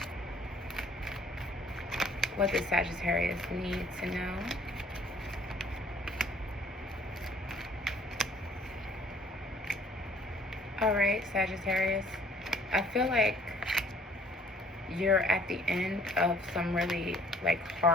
What does Sagittarius need to know? Alright, Sagittarius, I feel like you're at the end of some really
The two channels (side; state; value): both; normal; correlation 0.58